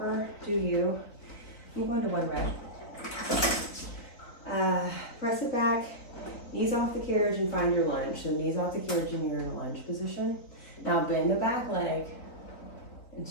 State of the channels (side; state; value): right; late; 4.0 ms